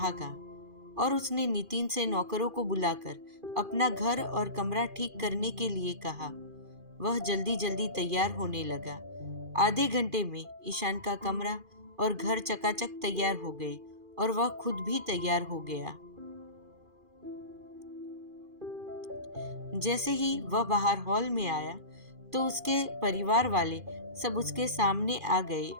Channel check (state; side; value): late; left; 2.4 ms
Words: और उसने नितिन से नौकरों को बुलाकर अपना घर और कमरा ठीक करने के लिए कहा। वह जल्दी जल्दी तैयार होने लगा। आधे घंटे में ईशान का कमरा और घर चकाचक तैयार हो गए और वह खुद भी तैयार हो गया। जैसे ही वह बाहर हॉल में आया तो उसके परिवार वाले सब उसके सामने आ गए